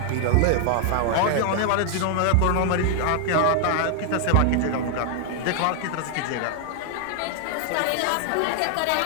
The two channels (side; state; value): both; different; correlation 0.00